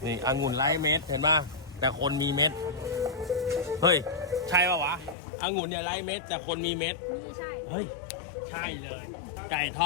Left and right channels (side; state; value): right; drops out; at 5.2 s